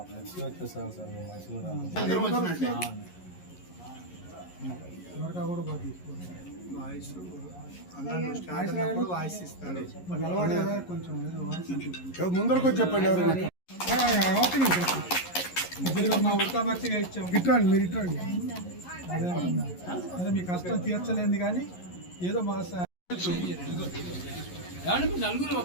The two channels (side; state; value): right; late; 11 ms